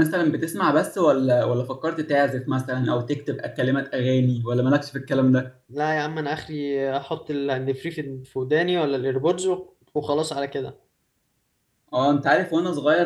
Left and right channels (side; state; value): both; identical; correlation 1.00